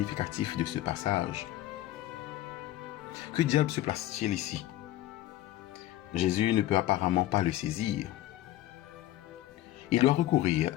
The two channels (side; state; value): right; quieter; 14.3 dB